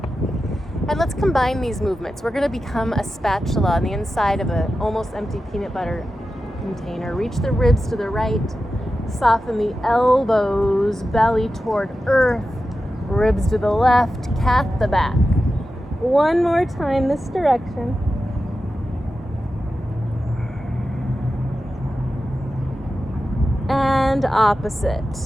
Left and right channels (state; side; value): normal; both; correlation 0.92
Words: And let's combine these movements. We're going to become a spatula on the inside of an almost empty peanut butter container. Reach the ribs to the right. Soften the elbows, belly toward earth. Ribs to the left, cat the back. One more time this direction. And